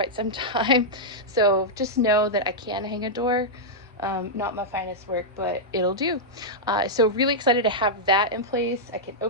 some time. So just know that I can hang a door. Not my finest work, but it'll do. So really excited to have that in place. I can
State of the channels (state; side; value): normal; both; correlation -0.07